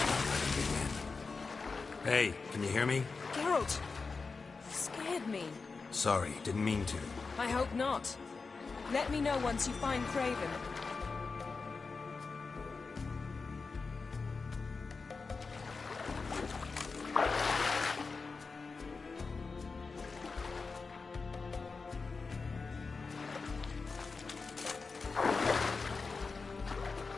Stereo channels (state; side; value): quieter; right; 4.4 dB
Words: Hey, can you hear me? Geralt! You scared me. Sorry, didn't mean to. I hope not. Let me know once you find Craven.